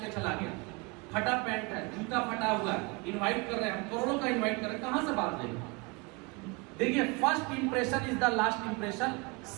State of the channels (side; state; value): left; quieter; 28.5 dB